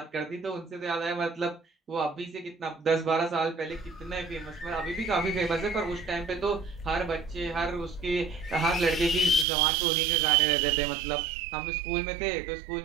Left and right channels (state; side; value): drops out; left; at 9.5 s